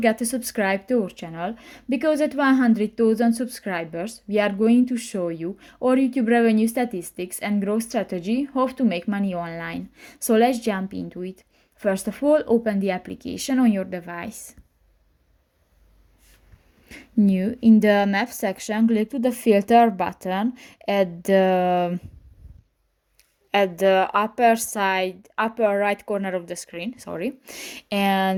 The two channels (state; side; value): identical; both; correlation 1.00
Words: to subscribe to our channel, because at 100,000 subscribers we are going to show you our YouTube revenue statistics and growth strategy, how to make money online. So let's jump into it. First of all, open the application on your device. New in the map section, click to the filter button at the upper right corner of the screen,